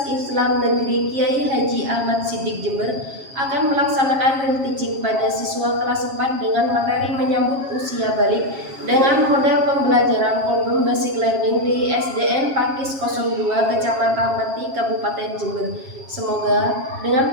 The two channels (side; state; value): left; late; 7.4 ms